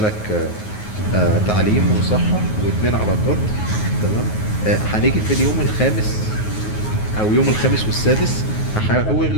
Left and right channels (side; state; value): right; late; 9.4 ms